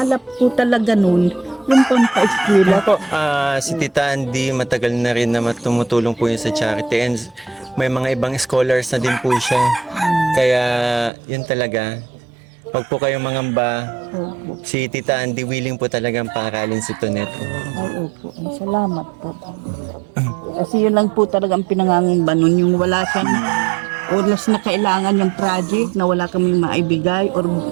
po talaga nun, yung pampaeskwela. Po, si Tita Andy, matagal na rin na tumutulong po yun sa charity and may mga ibang scholars na din po siya. Kaya yun talaga, wag po kayong mangamba. Opo. Si Tita Andy willing po talagang paaralin si Tonet. Ay, opo. Salamat po. Kasi yun lang po talagang pinangangamba nun, yung wala siyang oras na kailangan yung project na wala kaming maibigay or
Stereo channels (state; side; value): drops out; left; at 11.1 s